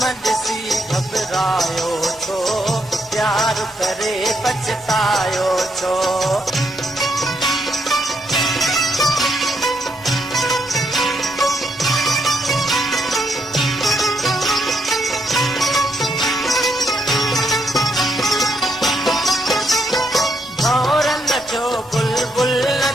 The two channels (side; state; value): both; normal; correlation 0.77